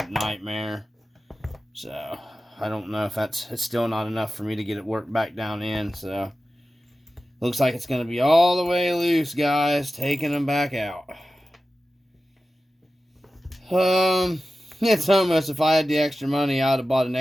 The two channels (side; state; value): both; normal; correlation 0.94